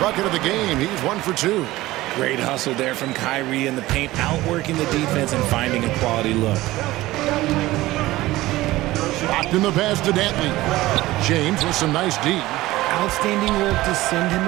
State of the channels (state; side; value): quieter; left; 17.6 dB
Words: bucket of the game. He's 1 for 2. Great hustle there from Kyrie in the paint, outworking the defense and finding a quality look. Locked in the pass to Dantley. James with some nice D. Outstanding work to send him